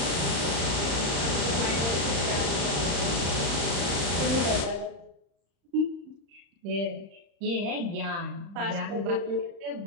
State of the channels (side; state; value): left; late; 35 ms